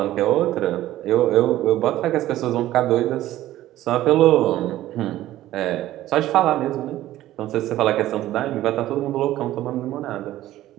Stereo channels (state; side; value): quieter; left; 14.5 dB